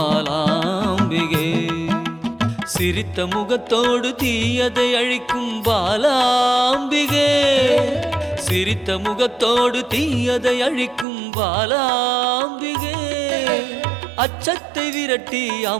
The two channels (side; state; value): left; drops out; at 11.1 s